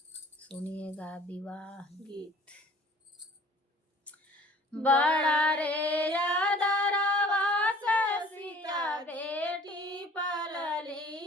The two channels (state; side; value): normal; both; correlation 0.50